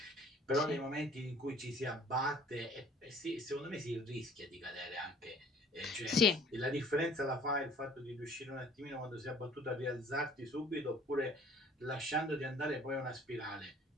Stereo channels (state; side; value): normal; both; correlation 0.54